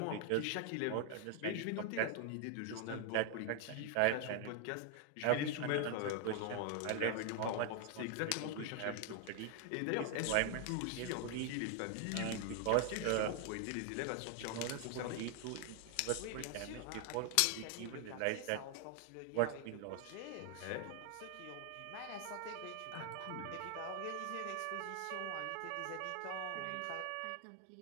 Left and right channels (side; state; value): both; different; correlation 0.00